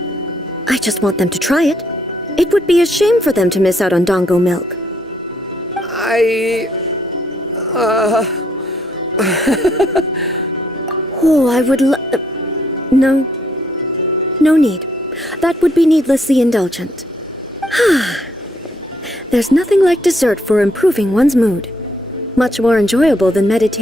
I just want them to try it. It would be a shame for them to miss out on Dango milk. Oh, I would No. No need. That would be needlessly indulgent. There's nothing like dessert for improving one's mood. Much more enjoyable than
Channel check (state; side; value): normal; both; correlation 0.71